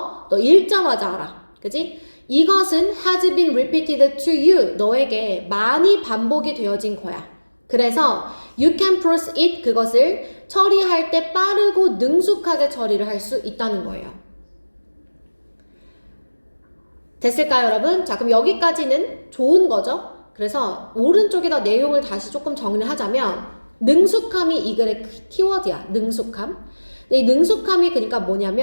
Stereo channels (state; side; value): inverted; both; correlation -1.00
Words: 너 읽자마자 알아. 그치? 이것은 has been repeated to you. 너에게 많이 반복이 되어진 거야. 그래서 you can process it. 그것을 처리할 때 빠르고 능숙하게 처리를 할 수 있다는 거예요. 됐을까요, 여러분? 자, 그럼 여기까지는 좋은 거죠? 그래서 오른쪽에다 내용을 다시 조금 정리를 하자면 능숙함이 이 글의 키워드야. 능숙함. 근데 이 능숙함이 그러니까